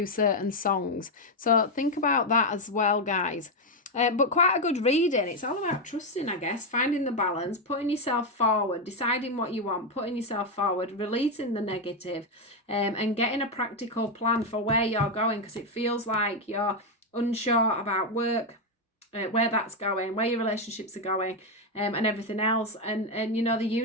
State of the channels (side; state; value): both; normal; correlation 0.05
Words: certain songs. So think about that as well, guys. But quite a good reading. It's all about trusting, I guess, finding the balance, putting yourself forward, deciding what you want, putting yourself forward, releasing the negative, and getting a practical plan for where you're going, because it feels like you're unsure about work, where that's going, where your relationships are going, and everything else. And you know, the